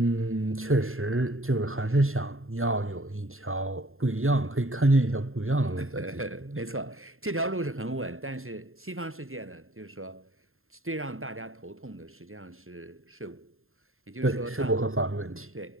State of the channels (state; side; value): late; left; 0.61 ms